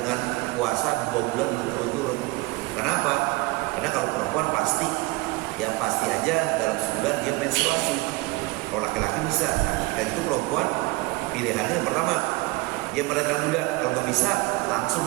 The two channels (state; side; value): quieter; left; 23.2 dB